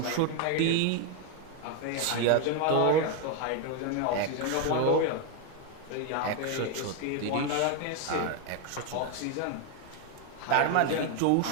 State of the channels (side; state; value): both; different; correlation 0.01